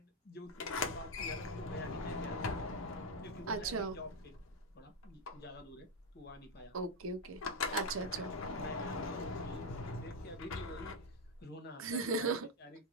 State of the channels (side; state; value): both; normal; correlation 0.04